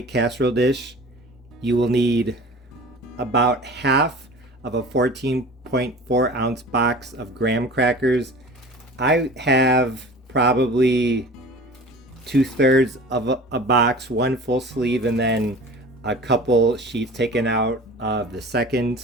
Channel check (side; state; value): both; normal; correlation 0.40